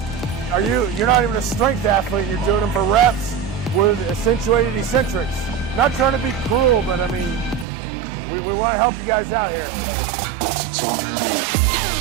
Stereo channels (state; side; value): drops out; left; at 7.7 s